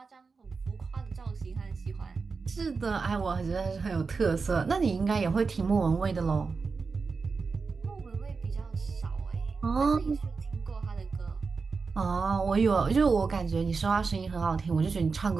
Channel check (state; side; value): quieter; left; 4.7 dB